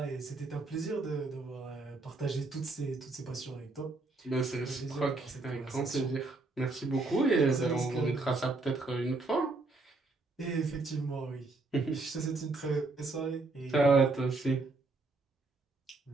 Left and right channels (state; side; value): quieter; left; 3.4 dB